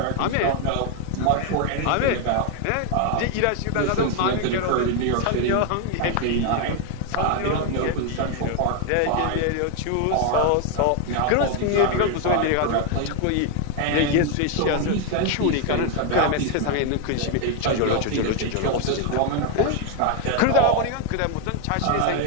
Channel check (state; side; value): different; both; correlation 0.01